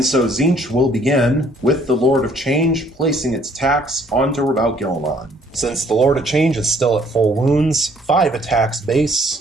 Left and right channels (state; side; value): normal; both; correlation 0.62